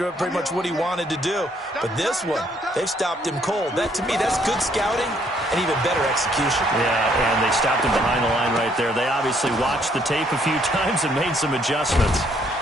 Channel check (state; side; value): normal; both; correlation 0.67